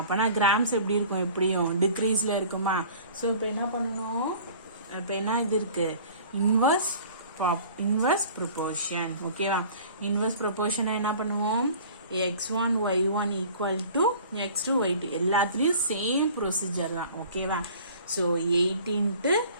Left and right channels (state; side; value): inverted; both; correlation -0.47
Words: கிராம்ஸ் எப்படி இருக்கும்? எப்படியும் டிக்ரீஸ்ல இருக்குமா? ஸோ இப்போ என்ன பண்ணணும்? இப்போ என்ன இது இருக்கு? Inverse proportion. ஓகேவா? இன்வர்ஸ் ப்ரொபோர்ஷனை என்ன பண்ணுவோம்? x1 y1 equal to x2 y2. எல்லாத்துலேயும் சேம் ப்ரொசீஜர் தான். ஓகேவா? So 8 into